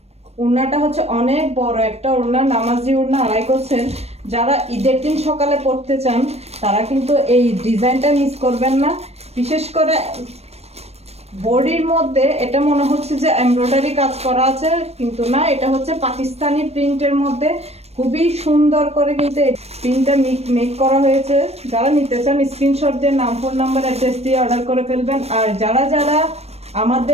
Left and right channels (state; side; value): late; left; 0.31 ms